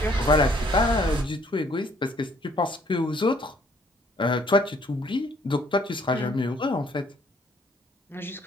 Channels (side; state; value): both; normal; correlation 0.62